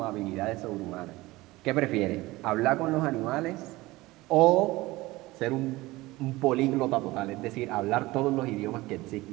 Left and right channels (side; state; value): left; quieter; 19.8 dB